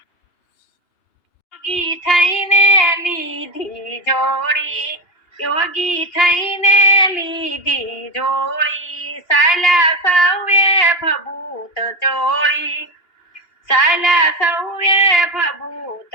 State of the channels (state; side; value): late; right; 2.8 ms